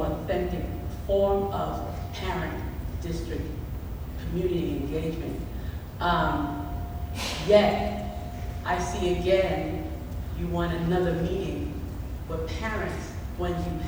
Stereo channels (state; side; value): identical; both; correlation 1.00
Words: authentic form of parent-district community engagement. Yet, I see again, you want another meeting with parents when you